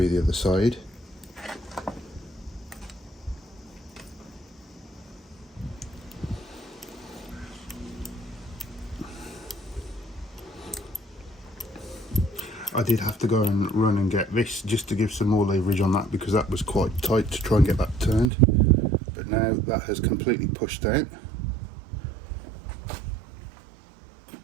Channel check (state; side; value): drops out; left; at 18.3 s